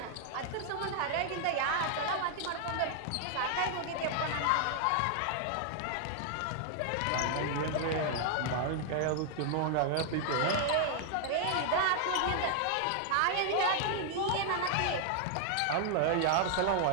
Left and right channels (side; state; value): both; different; correlation 0.00